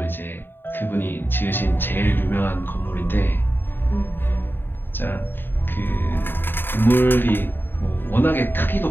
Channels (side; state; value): right; late; 0.098 ms